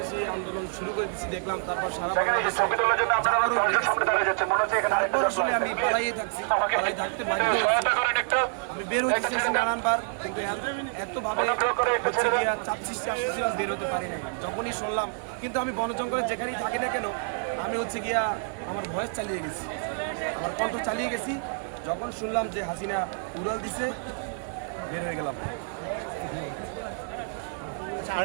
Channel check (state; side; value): silent; left; 56 dB below the other